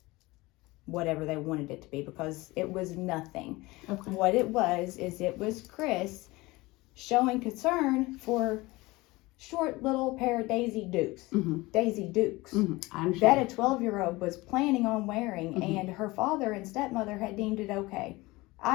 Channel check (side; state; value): right; quieter; 21.4 dB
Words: whatever they wanted it to be, because it was nothing. Okay. What it was Chris showing concern for short little pair of Daisy Dukes. Daisy Dukes. I understand. That a 12-year-old was planning on wearing, and her father and stepmother had deemed it okay.